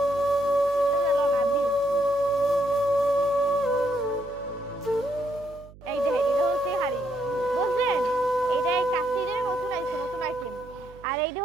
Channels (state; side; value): noise; right; hum, 21 dB below the sound